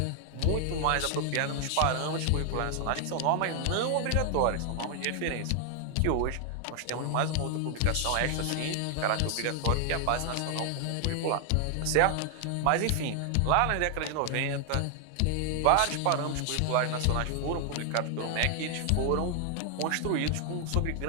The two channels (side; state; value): both; different; correlation 0.00